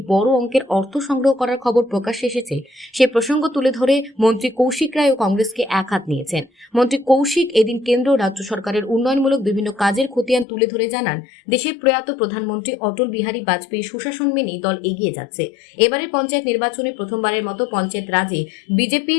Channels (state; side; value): drops out; right; at 10.5 s